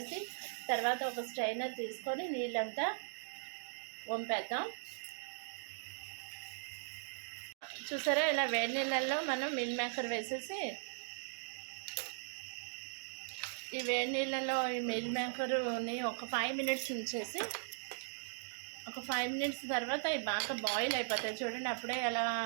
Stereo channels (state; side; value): silent; left; digital silence